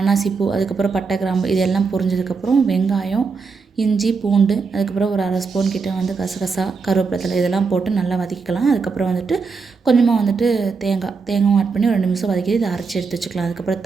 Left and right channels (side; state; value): left; quieter; 4.8 dB